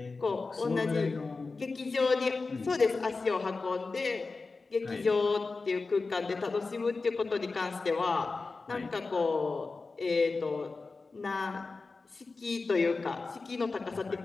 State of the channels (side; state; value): right; quieter; 3.9 dB